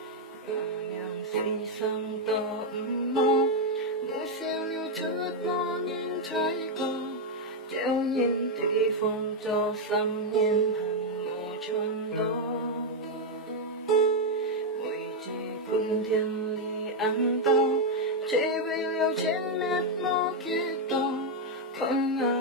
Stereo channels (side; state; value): both; normal; correlation 0.01